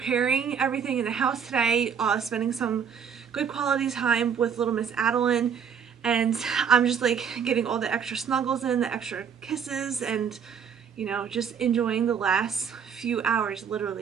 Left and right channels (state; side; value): quieter; left; 7.2 dB